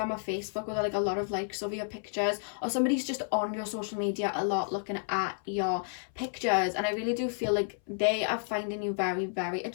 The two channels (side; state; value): right; silent; 57 dB below the other